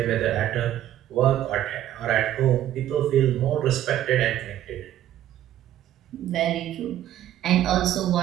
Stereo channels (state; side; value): quieter; left; 12.2 dB